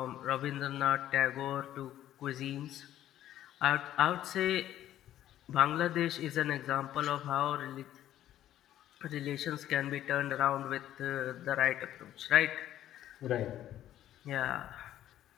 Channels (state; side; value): quieter; right; 12.4 dB